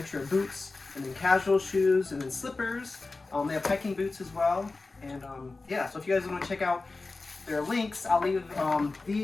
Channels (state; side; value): quieter; right; 3.6 dB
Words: of boots and then casual shoes and then slippers. They have hiking boots as well. And yeah, so if you guys want to check out their links, I'll leave